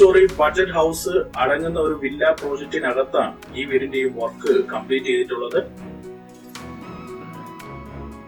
ബഡ്ജറ്റ് ഹൗസ് അടങ്ങുന്ന ഒരു വില്ല പ്രോജക്റ്റിനകത്താണ് ഈ വീടിന്റെയും വർക്ക് കംപ്ലീറ്റ് ചെയ്തിട്ടുള്ളത്.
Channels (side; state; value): both; identical; correlation 1.00